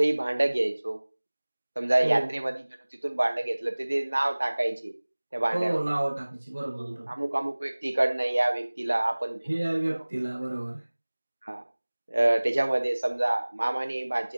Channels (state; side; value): inverted; both; correlation -1.00